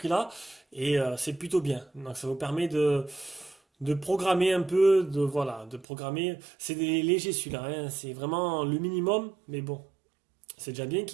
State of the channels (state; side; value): drops out; left; at 5.9 s